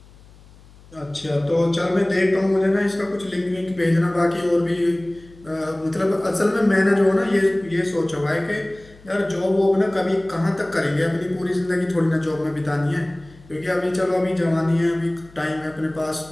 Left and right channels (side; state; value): left; noise; hum, 24 dB below the sound